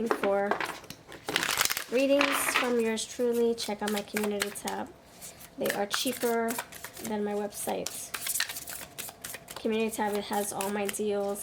for readings from yours truly, check out my community tab. They are cheaper than my website. Community tab, it has all my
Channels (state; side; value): identical; both; correlation 1.00